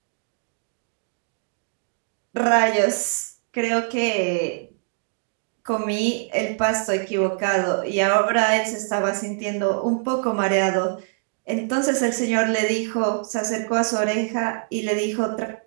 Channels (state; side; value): silent; left; 63 dB below the other